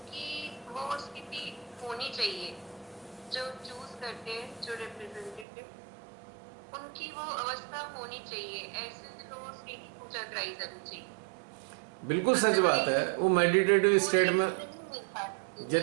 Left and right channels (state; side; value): drops out; left; at 5.5 s